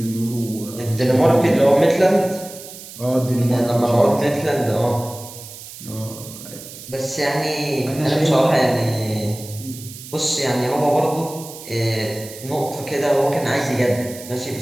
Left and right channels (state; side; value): noise; right; hiss, 15 dB below the sound